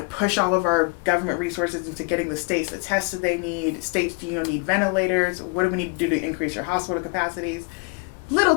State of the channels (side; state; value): right; quieter; 30.2 dB